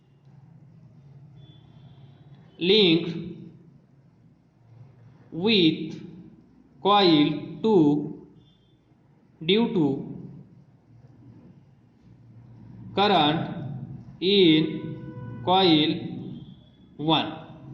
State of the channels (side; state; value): both; identical; correlation 1.00